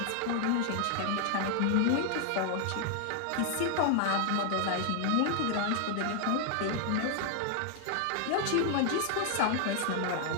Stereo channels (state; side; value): different; both; correlation 0.00